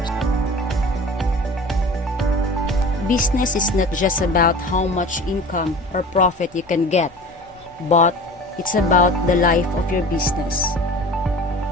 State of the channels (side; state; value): both; normal; correlation 0.39